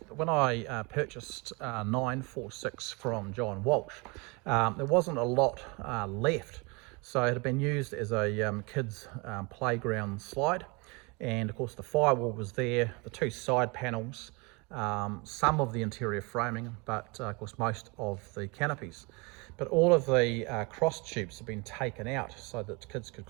when I purchased 946 from John Walsh, there wasn't a lot left. So it had been used as a kids playground slide. And of course the firewall was there, the two side panels, some of the interior framing, but of course most of the canopies. But all of the cross tubes have been taken out so that kids could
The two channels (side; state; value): left; quieter; 28.8 dB